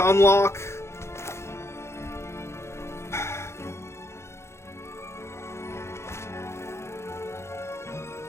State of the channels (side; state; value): right; late; 0.13 ms